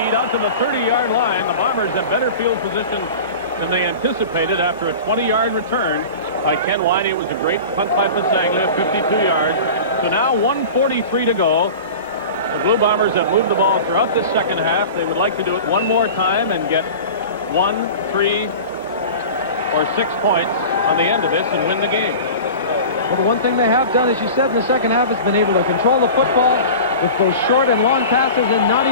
out to the 30-yard line. The Bombers have better field position than they anticipated after a 20-yard return by Ken Winey. It was a great punt by Pasaglia, 52 yards. So now 1:43 to go. The Blue Bombers have moved the ball throughout this second half. They would like to do it one more time and get 1, 3, or 6 points on the end of this and win the game. Well, the one thing they have done, as you said, in the second half has been able to control the football with both short and long passes and not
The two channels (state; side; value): inverted; both; correlation -0.35